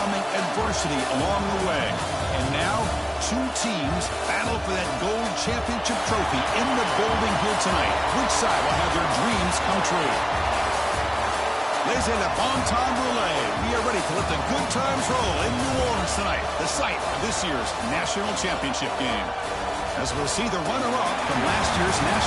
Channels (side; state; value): both; identical; correlation 1.00